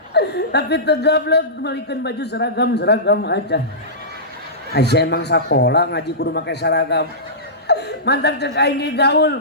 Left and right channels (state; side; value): normal; both; correlation -0.19